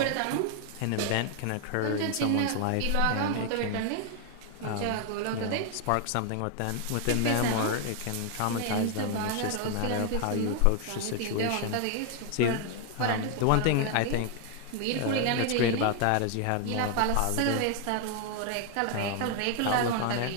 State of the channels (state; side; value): different; both; correlation 0.00